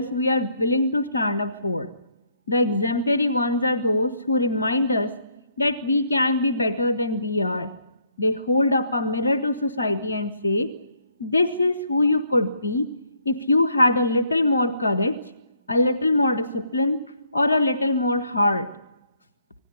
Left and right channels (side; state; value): both; inverted; correlation -0.70